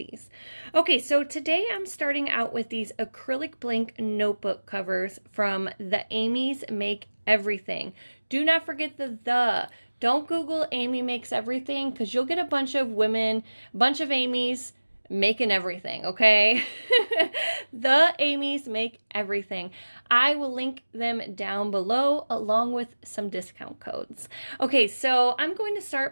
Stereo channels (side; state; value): both; inverted; correlation -1.00